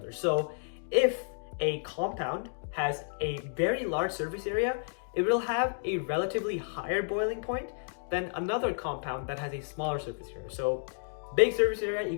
So if a compound has a very large surface area, it will have a relatively higher boiling point than another compound that has a smaller surface area. So big surface area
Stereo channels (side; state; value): right; silent; digital silence